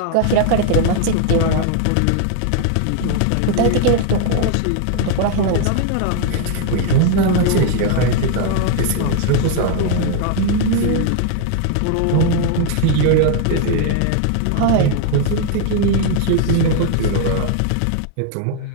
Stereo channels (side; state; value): both; different; correlation 0.00